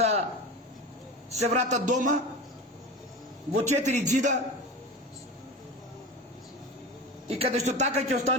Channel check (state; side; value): normal; both; correlation 0.29